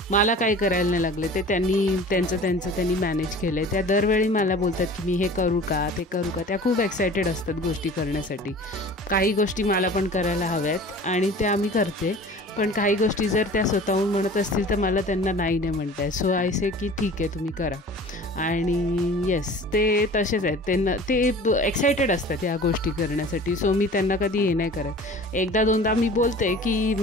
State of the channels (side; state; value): both; normal; correlation 0.42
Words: मला काही करायला नाही लागले. ते त्यांनी मॅनेज केलं आहे. त्या दरवेळी मला बोलतात की मी हे करू का, ते करू का. त्या खूप एक्सायटेड असतात गोष्टी करण्यासाठी. काही गोष्टी मला पण करायला हव्यात आणि त्या मी करते. पण काही गोष्टी जर त्या स्वतःहून म्हणत असतील तर मला त्यांना नाही म्हणत आहे. आय से की ठीक आहे, तुम्ही करा. आणि येस, ते तसेच आहेत. ते एक्सायटेड असतात या गोष्टी करण्यासाठी. मी त्यांना कधी हे नाही करत. 1-2दा मी बोलते की